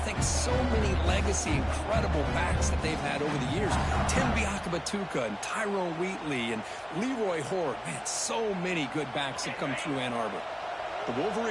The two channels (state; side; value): identical; both; correlation 1.00